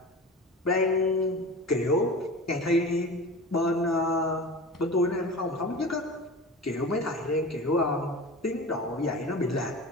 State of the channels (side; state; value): both; normal; correlation 0.33